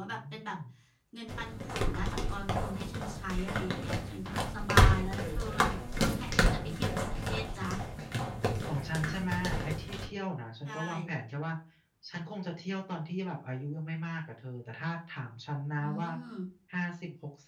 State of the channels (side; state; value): both; identical; correlation 1.00